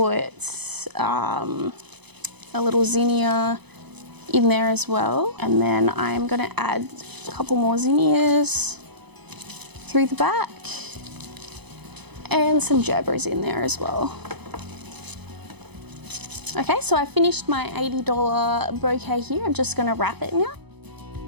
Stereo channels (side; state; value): left; late; 0.99 ms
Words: a little zinnia in there as well. And then I'm gonna add a couple more zinnias through the back. And some gerberas in there as well. Okay, so I finished my $80 bouquet here. I'm just gonna wrap it now.